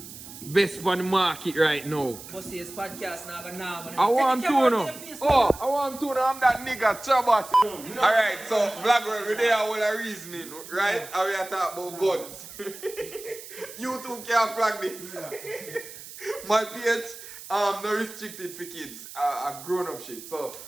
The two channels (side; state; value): right; noise; hiss, 14 dB below the sound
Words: Best on the market right now. But see, this podcast now gonna I want to know. I want to know. I'm that nigga Trabass. Alright, so vlog world, we there all a reasoning, right? And we are talking about guns. You two can't flag this. My page, no restricted for kids, a grown up shit. So